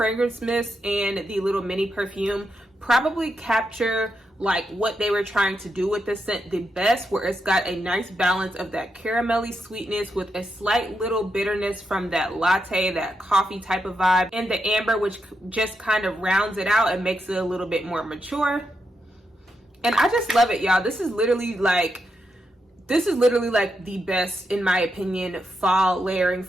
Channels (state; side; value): normal; both; correlation 0.84